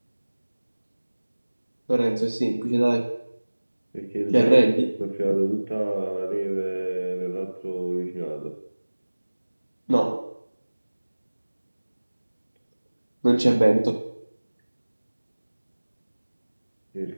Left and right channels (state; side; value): inverted; both; correlation -1.00